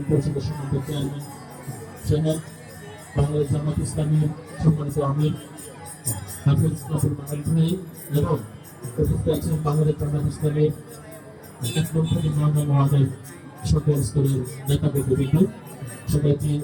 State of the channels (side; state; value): both; identical; correlation 1.00